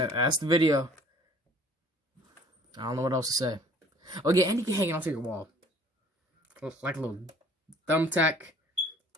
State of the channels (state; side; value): normal; both; correlation 0.53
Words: the video. I don't know what else to say. Oh yeah, and you can hang it onto your wall. Like a little thumbtack